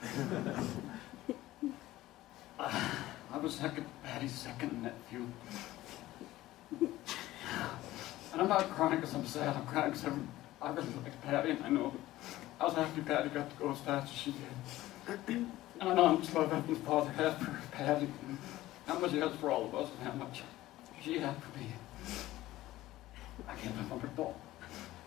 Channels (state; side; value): quieter; right; 16.2 dB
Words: I was Patty's second nephew. And I'm not crying because I'm sad, I'm crying because I really like Patty, and I know I was happy Patty got to go as fast as she did. And I know how much love Heavenly Father had for Patty, and how much he has for all of us, and how much she had for me. I can't remember it all.